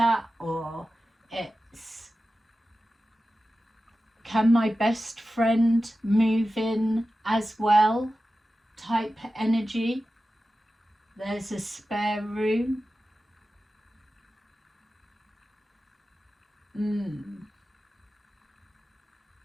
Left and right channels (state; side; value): normal; both; correlation 0.94